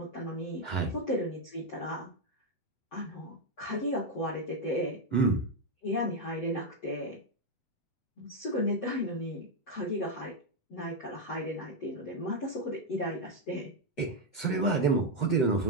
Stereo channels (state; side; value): late; right; 7.9 ms